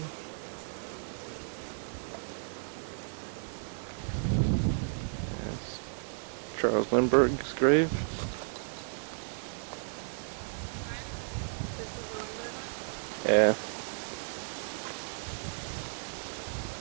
That's Charles Lindbergh's grave. Yeah.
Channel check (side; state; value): left; silent; 55 dB below the other